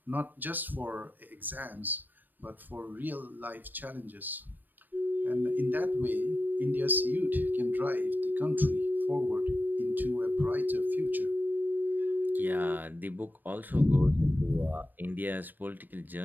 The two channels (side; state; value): left; late; 0.090 ms